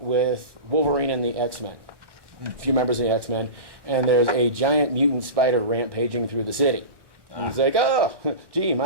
Wolverine and the X-Men. A few members of the X-Men. And there's a giant mutant spider rampaging through the city. He's like, oh, gee,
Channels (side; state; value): left; late; 1.1 ms